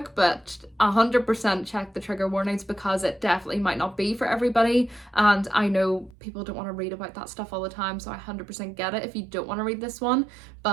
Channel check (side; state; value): left; drops out; at 6.2 s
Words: but 100% check the trigger warnings because it definitely might not be for everybody. And I know people don't want to read about that stuff all the time, so I 100% get it if you don't want to read this one.